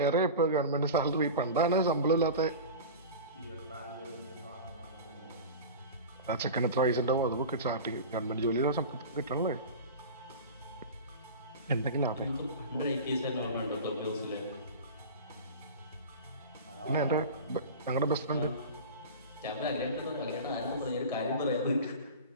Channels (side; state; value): both; inverted; correlation -0.31